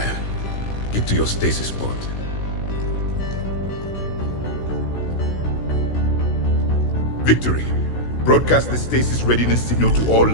Get to your stasis pod. Victory. Broadcast the stasis readiness signal to all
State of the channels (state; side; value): late; right; 16 ms